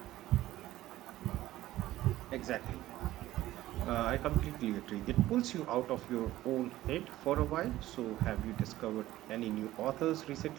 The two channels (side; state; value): left; quieter; 15.3 dB